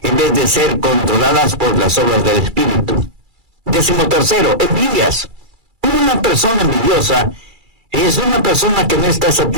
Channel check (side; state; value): left; late; 2.3 ms